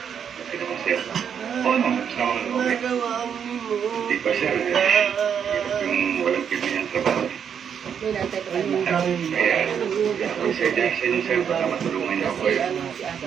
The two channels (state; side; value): quieter; left; 7.8 dB